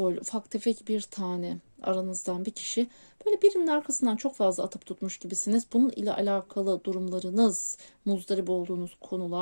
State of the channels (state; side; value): inverted; both; correlation -1.00